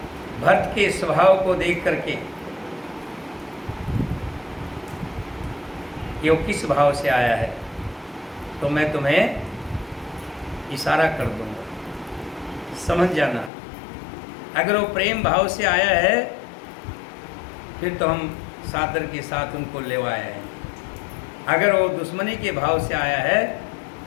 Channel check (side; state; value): right; drops out; at 13.5 s